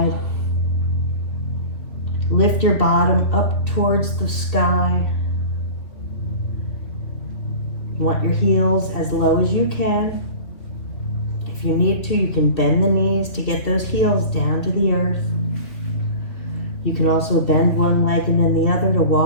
Lift your bottom up towards the sky. You want your heels as low as you can. If you need to, you can bend the knees to get those heels down to the earth. You can also bend one leg and then the other to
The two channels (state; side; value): late; right; 2.9 ms